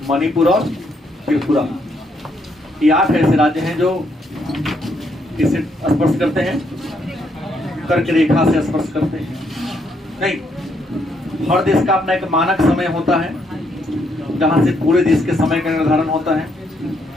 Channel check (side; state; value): both; normal; correlation 0.74